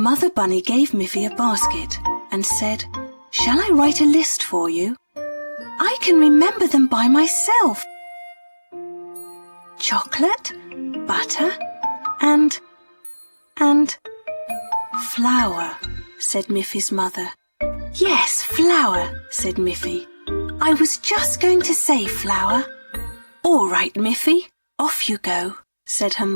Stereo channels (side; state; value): both; inverted; correlation -1.00